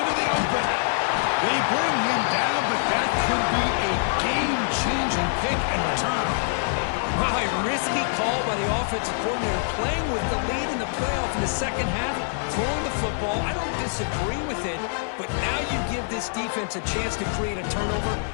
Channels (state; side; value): silent; right; digital silence